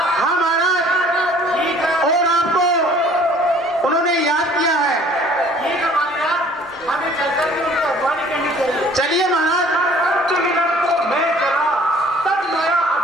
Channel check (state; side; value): normal; both; correlation 0.53